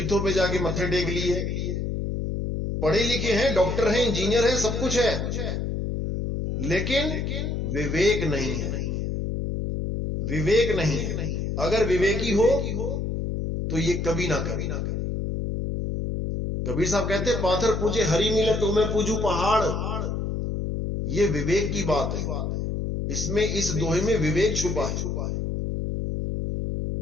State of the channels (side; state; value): left; noise; hum, 2 dB below the sound